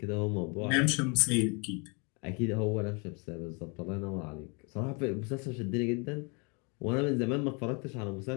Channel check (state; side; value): quieter; right; 33.1 dB